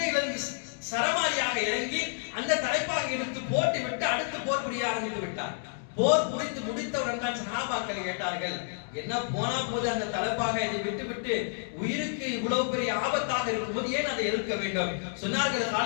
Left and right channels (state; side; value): silent; right; digital silence